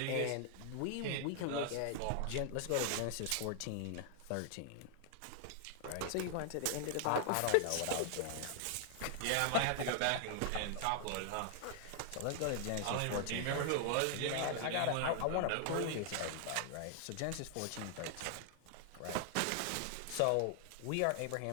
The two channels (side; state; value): both; different; correlation 0.00